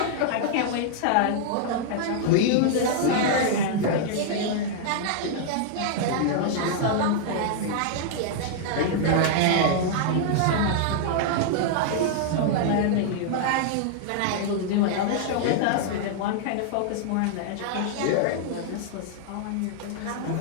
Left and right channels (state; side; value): different; both; correlation -0.01